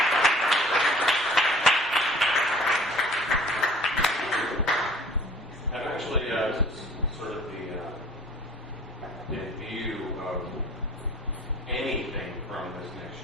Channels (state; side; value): normal; both; correlation 0.50